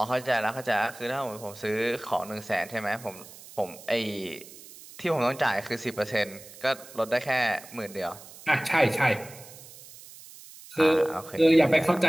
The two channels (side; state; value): right; noise; hiss, 18 dB below the sound